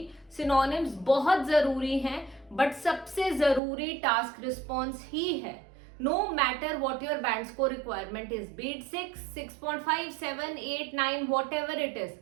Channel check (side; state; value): left; drops out; at 3.6 s